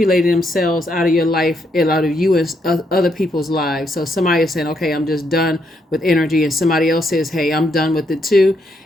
themselves out of your life and out of you and other people's lives. So somebody is saying, okay, I'm just done with energy, and somebody else says, hey, I'm done with it too.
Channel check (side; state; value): both; normal; correlation 0.77